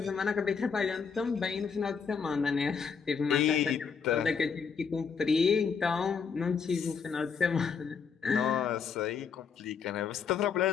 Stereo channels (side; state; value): right; quieter; 6.1 dB